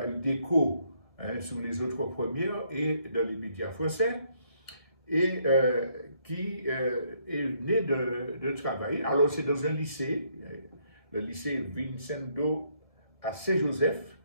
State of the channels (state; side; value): late; right; 1.7 ms